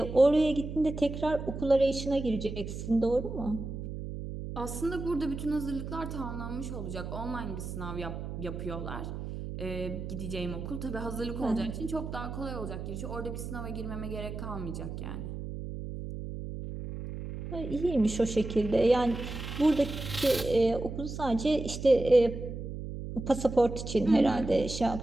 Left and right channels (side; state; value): right; noise; hum, 7 dB below the sound